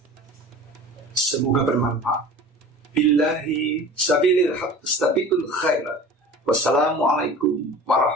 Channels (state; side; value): normal; both; correlation 0.39